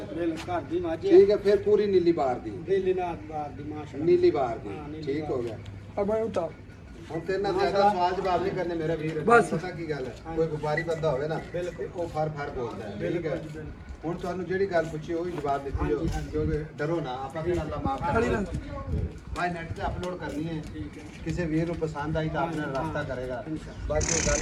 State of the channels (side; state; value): both; identical; correlation 1.00